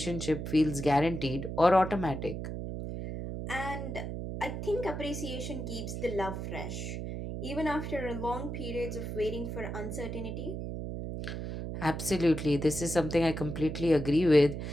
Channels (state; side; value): noise; right; hum, 5 dB below the sound